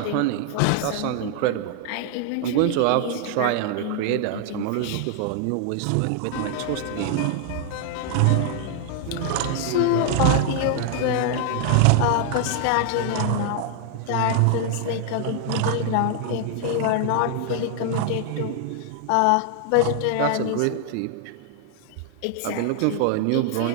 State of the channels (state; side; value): different; both; correlation 0.00